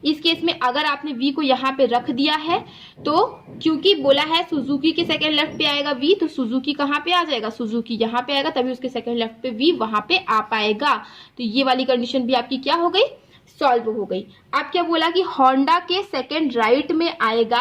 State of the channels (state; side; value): identical; both; correlation 1.00